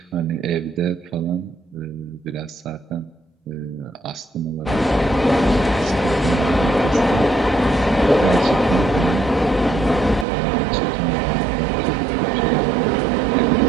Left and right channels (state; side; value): drops out; left; at 10.2 s